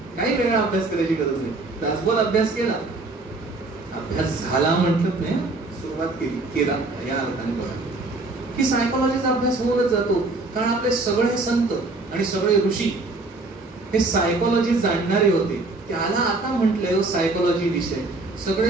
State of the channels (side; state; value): left; quieter; 3.2 dB